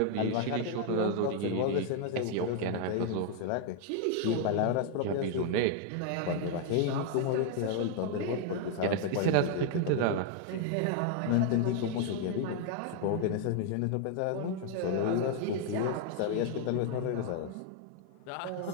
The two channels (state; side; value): different; both; correlation 0.00